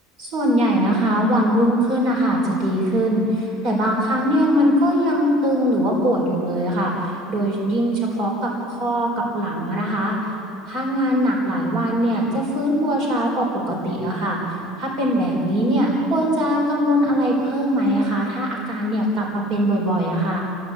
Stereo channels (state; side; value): normal; both; correlation 0.50